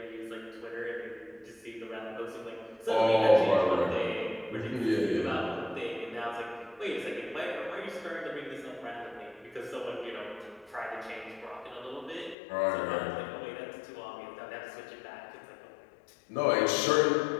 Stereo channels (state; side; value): drops out; right; at 12.4 s